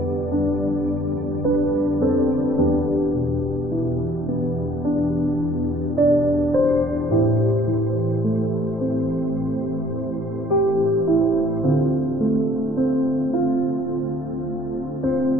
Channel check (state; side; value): normal; both; correlation 0.58